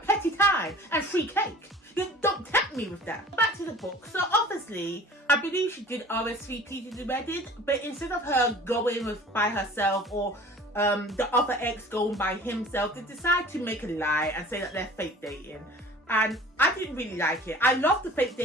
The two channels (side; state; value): both; normal; correlation 0.45